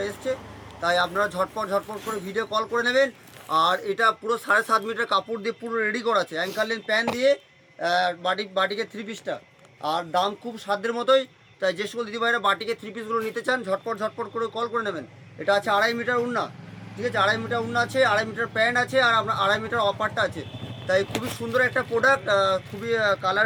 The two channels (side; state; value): both; identical; correlation 1.00